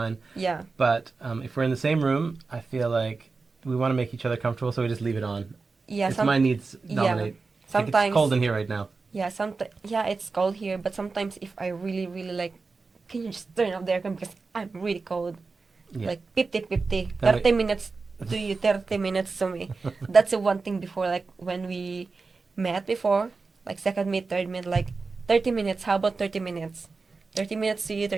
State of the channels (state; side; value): quieter; left; 4.2 dB